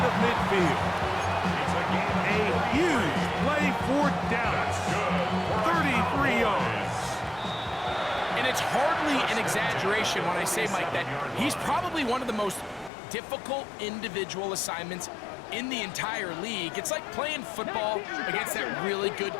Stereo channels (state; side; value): drops out; right; at 12.9 s